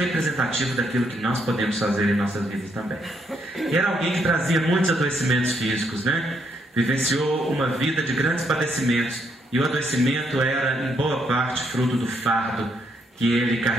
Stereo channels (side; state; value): both; normal; correlation 0.74